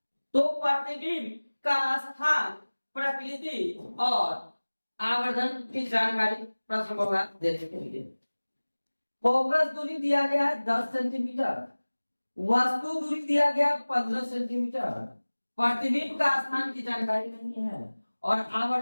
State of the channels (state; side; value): inverted; both; correlation -1.00